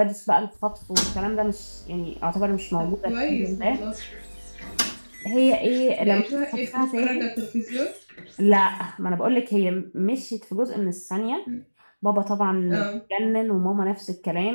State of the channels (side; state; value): both; inverted; correlation -1.00